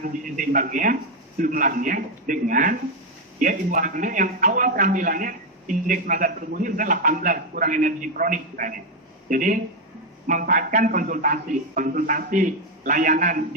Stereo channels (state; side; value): normal; both; correlation 0.05